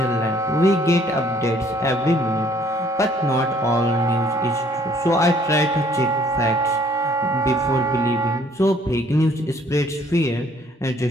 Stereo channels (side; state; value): both; normal; correlation 0.60